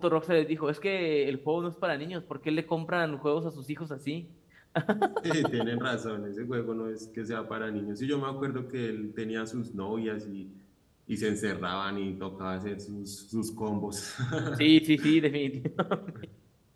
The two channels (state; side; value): identical; both; correlation 1.00